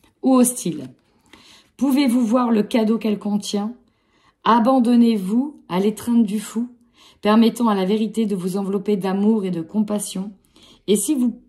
ou hostile. Pouvez-vous voir le cadeau qu'elle contient? Abandonnez-vous à l'étreinte du fou, permettant à la vérité de vous envelopper d'amour et de compassion. Et si vous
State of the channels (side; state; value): both; identical; correlation 1.00